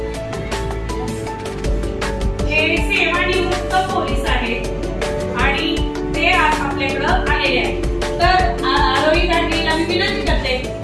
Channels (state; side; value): identical; both; correlation 1.00